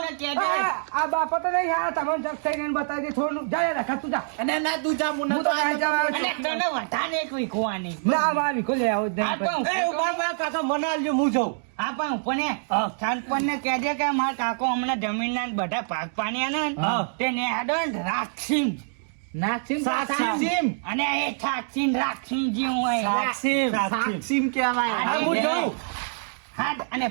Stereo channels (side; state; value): left; silent; digital silence